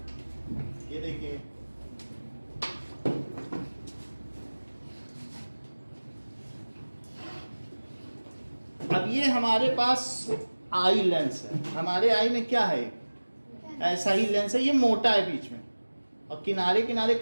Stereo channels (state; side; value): inverted; both; correlation -1.00